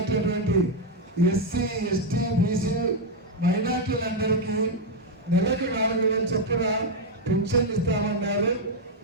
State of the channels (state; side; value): normal; both; correlation 0.02